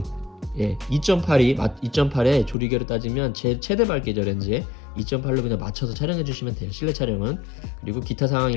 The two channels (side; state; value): right; drops out; at 2.6 s